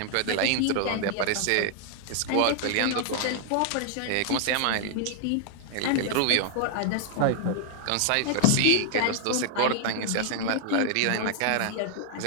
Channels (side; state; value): both; different; correlation 0.00